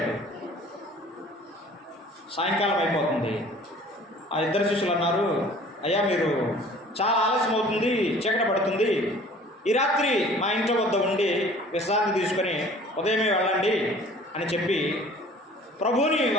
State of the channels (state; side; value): normal; both; correlation 0.49